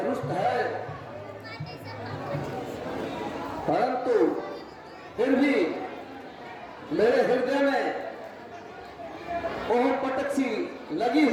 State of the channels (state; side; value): identical; both; correlation 1.00